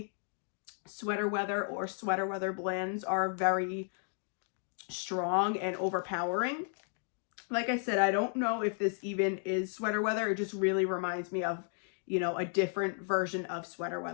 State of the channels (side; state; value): right; silent; 55 dB below the other